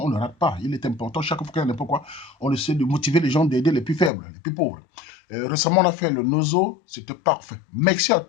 on ne rate pas. Il est important, chaque fois qu'il y a n'importe quoi, on essaie de motiver les gens, d'aider les plus faibles, les plus pauvres. Récemment, on a fait le Nozo, c'était parfait. Merci à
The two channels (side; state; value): right; drops out; at 4.1 s